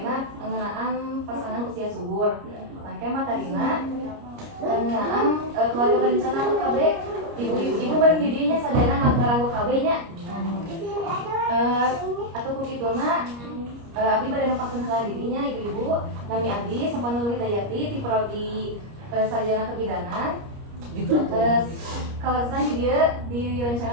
ngeunaan pasangan usia subur. Mangke materina ngeunaan keluarga berencana KB. Ibu bari di dieu nya sadayana ngaranggo KB nya. Atau kukituna abdi bade nepakeun heula dirinya ibu-ibu nami abdi Sapanul Hidayati ti prodi sarjana kebidanan kalarasan di dieu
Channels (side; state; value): left; late; 29 ms